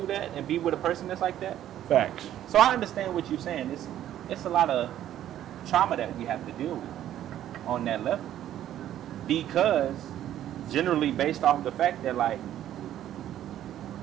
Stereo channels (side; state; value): left; quieter; 11.8 dB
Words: that and be with a person that's like that? Facts. So I understand what you're saying. It's a lot of trauma that we have to deal with on that level, because generally based off the fact that, like,